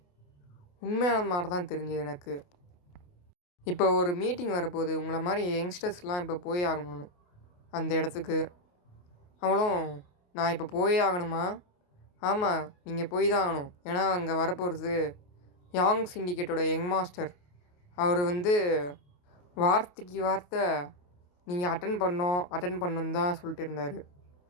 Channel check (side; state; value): right; late; 28 ms